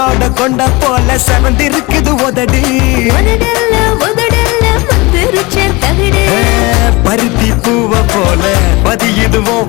கொண்ட போல செவந்திருக்குது உதடி பருத்தி பூவ போல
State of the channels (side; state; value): right; quieter; 24.2 dB